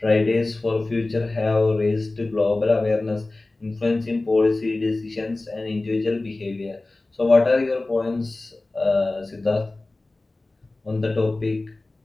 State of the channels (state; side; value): quieter; right; 3.0 dB